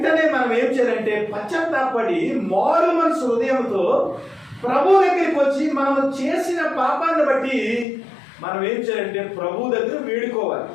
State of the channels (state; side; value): drops out; right; at 7.9 s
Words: మనం ఏం చేయాలంటే పశ్చాత్తాపడి మారు మనసు హృదయంతో ప్రభు దగ్గరికి వచ్చి మనం చేసిన పాపాన్ని బట్టి మనం ఏం చేయాలంటే ప్రభు దగ్గర వేడుకోవాలి.